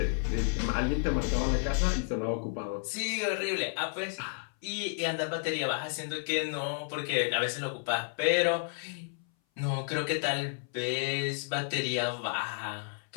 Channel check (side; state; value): right; silent; 57 dB below the other